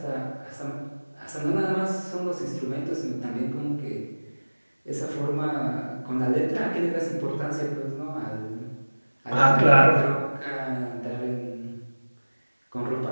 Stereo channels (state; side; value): inverted; both; correlation -1.00